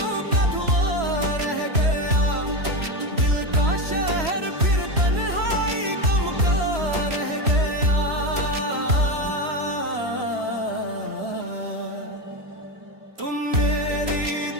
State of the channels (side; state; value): left; late; 3.0 ms